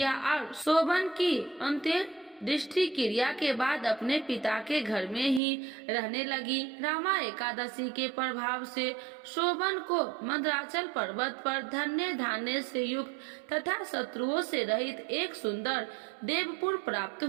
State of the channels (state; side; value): drops out; left; at 5.4 s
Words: और शोभन की अंत्य दृष्टि क्रिया के बाद अपने पिता के घर में ही रहने लगी। रामा एकादशी के प्रभाव से शोभन को मंदराचल पर्वत पर धन्य धान्य से युक्त तथा शत्रुओं से रहित एक सुंदर देवपुर प्राप्त